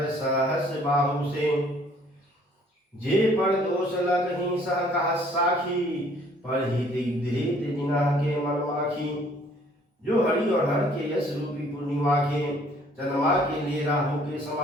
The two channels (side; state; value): both; normal; correlation 0.59